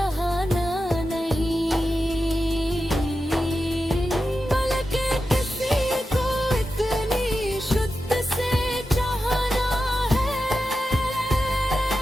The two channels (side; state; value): both; normal; correlation 0.91